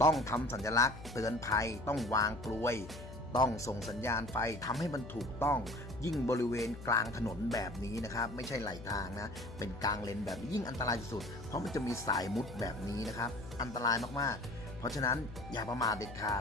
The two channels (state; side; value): noise; left; hum, 13 dB below the sound